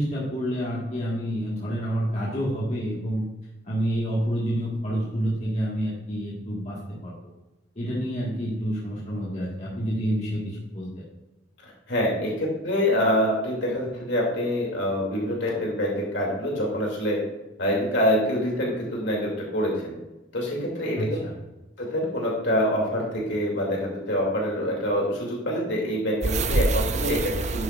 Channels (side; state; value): both; normal; correlation 0.38